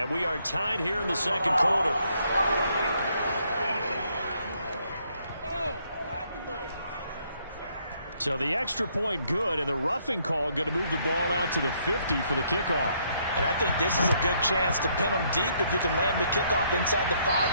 we are tied here in the second quarter. So the extra point good, and the roughing call going to move the ball out to the 50 for the kickoff. And I think this is a good chance to pin them deep if you can land the kickoff inside the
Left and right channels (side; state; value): both; inverted; correlation -0.70